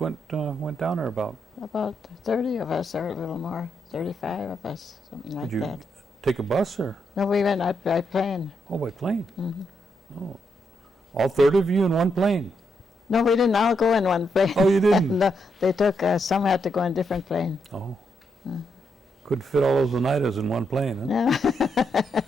down there about? About 30 of us, or a little more. 35 of us, something like Did you that. take a bus or? No, we went out by plane. Oh, by plane. Mhm. Oh, all 30 of you in one plane. No, we didn't all go in one plane. Oh, you didn't? No, they took, some had to go in different plane. Oh, couldn't fit all those Oneidas in one plane, huh? Yeah.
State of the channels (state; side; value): normal; both; correlation 0.80